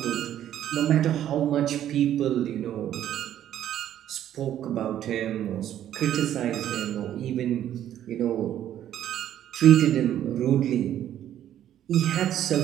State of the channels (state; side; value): quieter; left; 11.3 dB